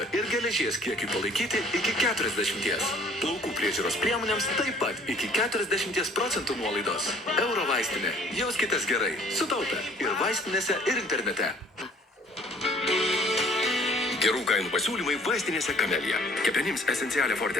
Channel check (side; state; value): both; normal; correlation 0.55